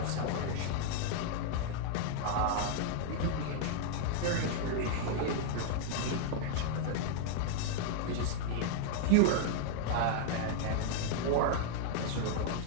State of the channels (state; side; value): different; both; correlation 0.00